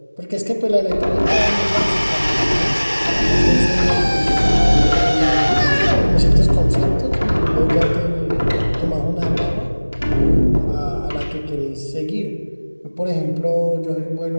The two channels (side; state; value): both; inverted; correlation -1.00